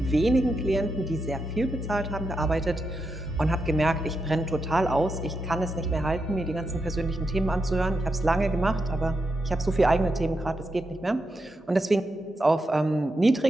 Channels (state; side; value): normal; both; correlation 0.85